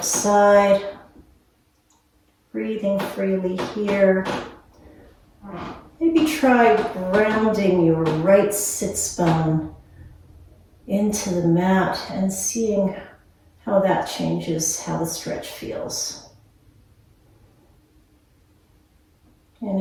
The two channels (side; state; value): both; identical; correlation 1.00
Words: side. Breathing freely here. Maybe try grounding your right sits bone into the mat and seeing how that changes how the stretch feels.